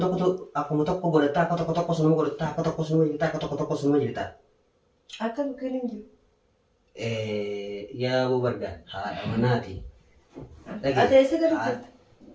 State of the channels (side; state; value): both; identical; correlation 1.00